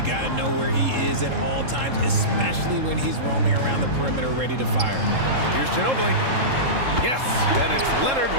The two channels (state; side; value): late; left; 3.7 ms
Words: got to know where he is at all times, especially when he's roaming around the perimeter ready to fire. Here's Ginobili. Yes, and it's Leonard